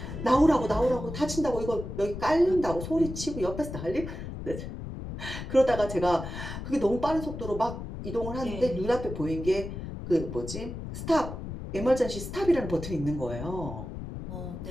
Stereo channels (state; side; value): noise; left; rumble, 8 dB below the sound